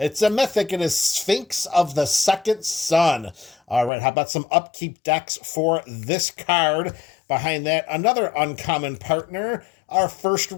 mythic. It is Sphinx of the Second Sun. All right, how about some upkeep decks for this card? Behind that, another uncommon partner. Our first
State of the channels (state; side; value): drops out; right; at 3.9 s